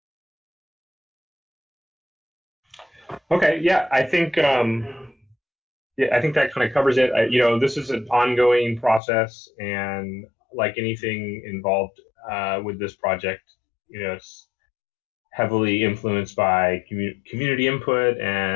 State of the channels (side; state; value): right; drops out; at 9.0 s